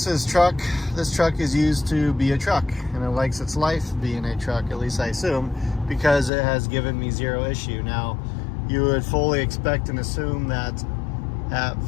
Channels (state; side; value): drops out; right; at 6.3 s